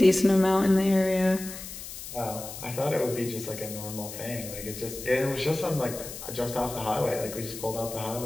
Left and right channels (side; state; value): left; noise; hiss, 11 dB below the sound